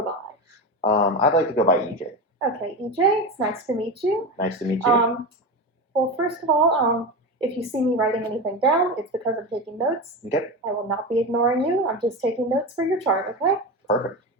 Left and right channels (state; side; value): normal; both; correlation 0.21